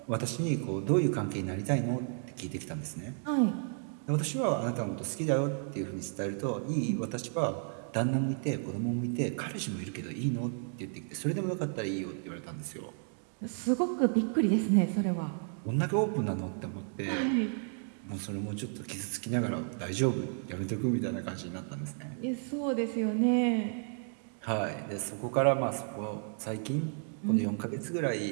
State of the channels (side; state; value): left; silent; 56 dB below the other